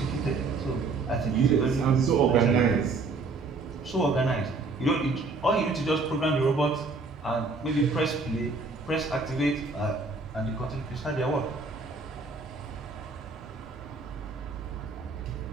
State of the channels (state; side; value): quieter; left; 3.9 dB